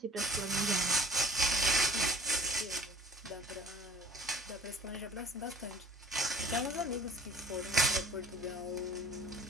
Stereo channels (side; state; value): both; normal; correlation 0.47